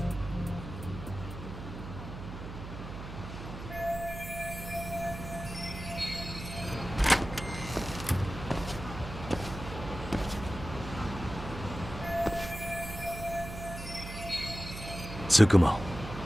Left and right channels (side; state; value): right; noise; hum, 10 dB below the sound